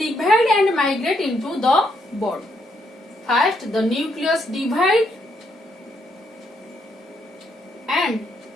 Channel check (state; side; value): normal; both; correlation 0.75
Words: and migrate into the bud. First the nucleus divide and